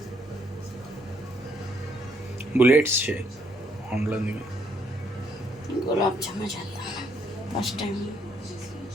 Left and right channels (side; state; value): both; normal; correlation 0.70